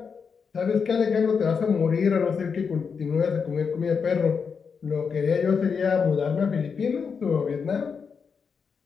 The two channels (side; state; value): right; quieter; 5.9 dB